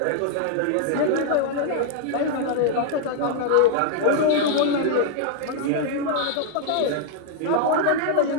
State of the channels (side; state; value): both; different; correlation 0.00